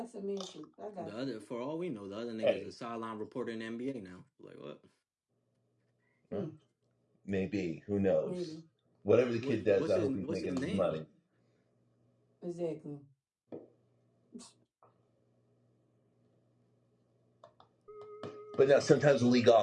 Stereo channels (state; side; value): identical; both; correlation 1.00